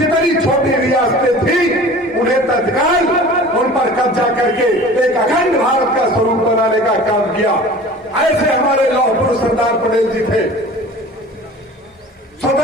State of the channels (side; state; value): both; normal; correlation 0.42